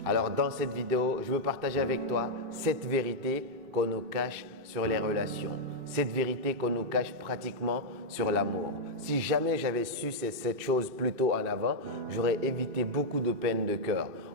Alors dans cette vidéo, je veux partager avec toi cette vérité qu'on nous cache sur les relations. Cette vérité qu'on nous cache pratiquement sur l'amour. Si jamais j'avais su cette chose plus tôt en avant, j'aurais évité beaucoup de peine de cœur.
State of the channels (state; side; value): late; left; 2.7 ms